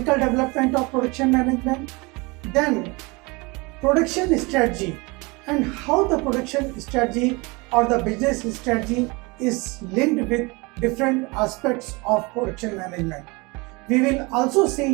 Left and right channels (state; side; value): quieter; left; 26.4 dB